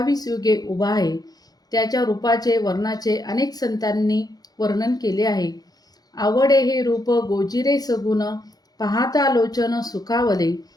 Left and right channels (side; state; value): right; late; 0.19 ms